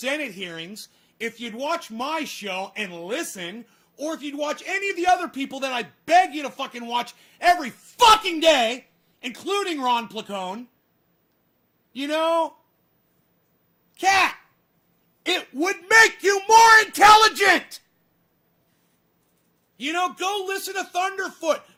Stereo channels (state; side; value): identical; both; correlation 1.00